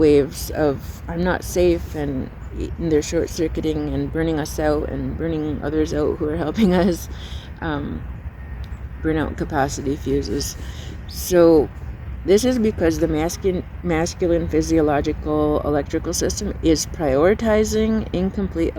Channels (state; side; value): identical; both; correlation 1.00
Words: of I'm not safe, and they're short-circuiting and burning us out and burning others out who are helping us. Burnout capacity fuses. So this is because the masculine physiological electrical system is prioritizing incomplete